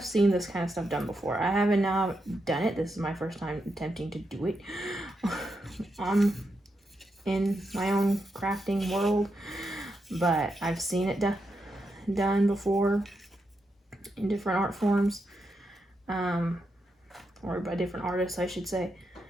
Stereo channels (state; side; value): normal; both; correlation 0.84